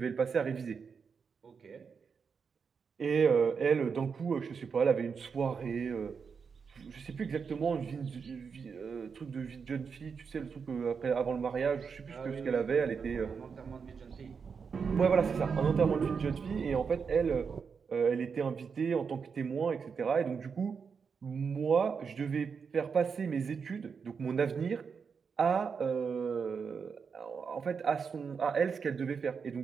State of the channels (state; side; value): quieter; left; 5.9 dB